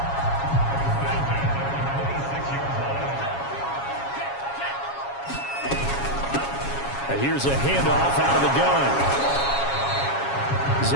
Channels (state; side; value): late; right; 7.3 ms